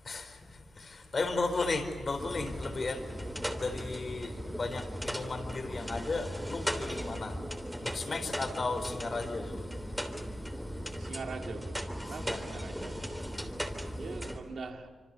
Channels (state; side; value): normal; both; correlation 0.93